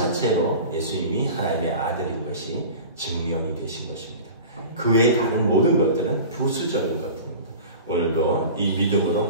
예수님이 하나님의 아들인 것이 증명이 되신 것입니다. 그 외의 다른 모든 것들은 부수적인 것입니다. 오늘도 이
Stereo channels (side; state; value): both; inverted; correlation -0.37